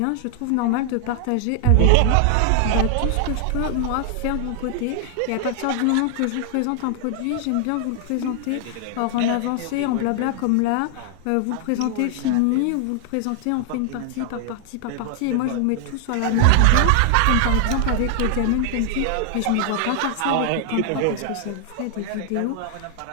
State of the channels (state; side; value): different; both; correlation 0.00